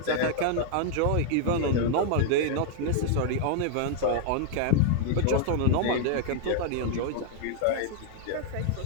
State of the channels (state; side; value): different; both; correlation -0.01